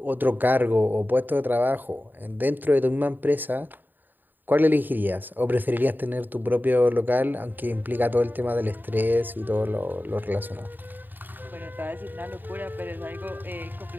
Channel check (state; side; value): late; left; 0.090 ms